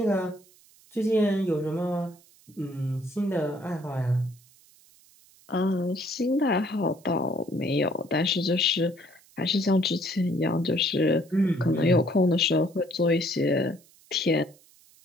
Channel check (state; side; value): noise; right; hiss, 28 dB below the sound